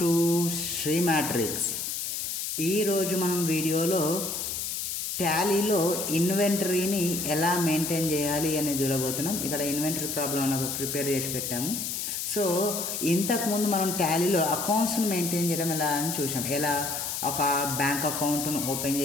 to Sri Matrix. ఈరోజు మనం వీడియోలో టాలీలో ఇన్వెంటరీని ఎలా మెయింటైన్ చేయాలి అని చూడబోతున్నాం. ఇక్కడ ఇన్వెంటరీ ప్రాబ్లం నాకు ప్రిపేర్ చేసి పెట్టాము. సో ఇంతకుముందు మనం టాలీలో అకౌంట్స్ని మెయింటైన్ చేయడం ఎలా అని చూసాం. ఎలా ఒక బ్యాంక్ అకౌంట్ను ఓపెన్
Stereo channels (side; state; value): left; noise; hiss, 3 dB below the sound